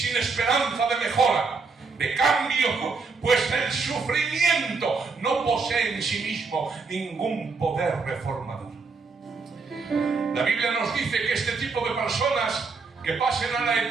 esperanza de mejora, de cambio, pues el sufrimiento no posee en sí mismo ningún poder reformador. La Biblia nos dice que este tipo de personas que pasen a la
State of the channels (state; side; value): quieter; left; 4.5 dB